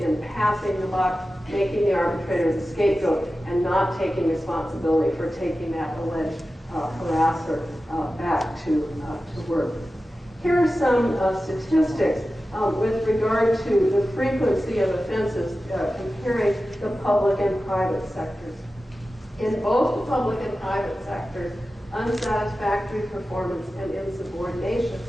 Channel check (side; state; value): both; normal; correlation 0.94